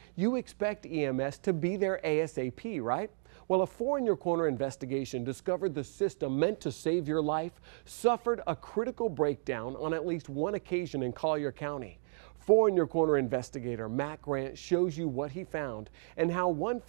you expect EMS to be there ASAP, right? Well, a 4 in Your Corner investigation discovered the system meant to save your life suffered a critical breakdown on at least one occasion in Collier County. 4 in Your Corner investigator Matt Grant shows you what he found and how one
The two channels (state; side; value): silent; left; 56 dB below the other